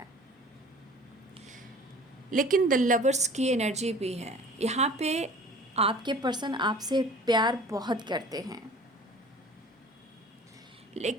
लेकिन द लवर्स की एनर्जी भी है यहाँ पे। आपके पर्सन आपसे प्यार बहुत करते हैं,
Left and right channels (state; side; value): normal; both; correlation 0.45